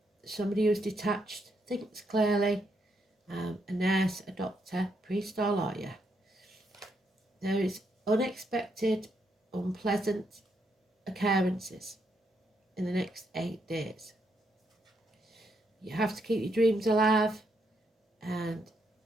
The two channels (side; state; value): both; normal; correlation 0.77